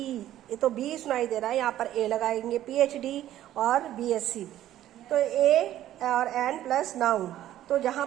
ये तो बी सुनाई दे रहा है, यहाँ पर ए लगाएंगे। PhD और BSc, तो ए और एन प्लस नाउन। तो जहाँ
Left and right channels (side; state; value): left; quieter; 12.8 dB